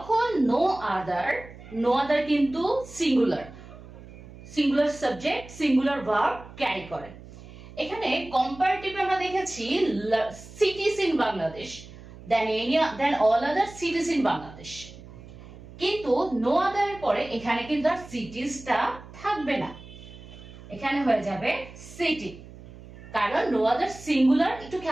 no other কিন্তু singular subject singular verb carry করে। এখানে কম্পারেটিভ আমরা দেখেছি cities in Bangladesh then all other cities in Bangladesh, কিন্তু no other এর পরে এখানে কিন্তু আর সিটিসটা থাকবে না, এখানে হয়ে যাবে সিটি, কারণ no other সিঙ্গুলার। একটু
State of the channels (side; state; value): right; noise; hum, 17 dB below the sound